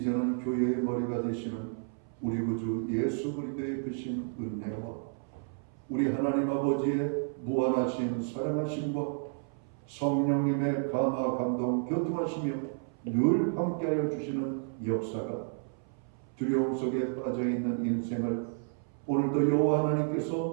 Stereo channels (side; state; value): left; silent; 57 dB below the other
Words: 교회의 머리가 되시는 우리 구주 예수 그리스도의 크신 은혜와 우리 하나님 아버지의 무한하신 사랑하심과 성령님의 감화 감동 교통하시며 늘 함께하여 주시는 역사가 두려움 속에 빠져있는 인생을 오늘도 여호와